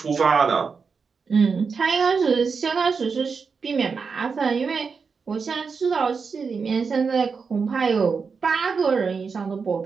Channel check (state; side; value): quieter; left; 5.3 dB